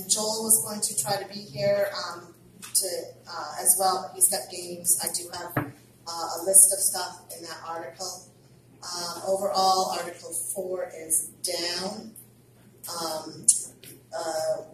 Joel was going to try to be here as well. He's got games. I do have a list of stuff in that article. Overall, Article 4 is down.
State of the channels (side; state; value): both; identical; correlation 1.00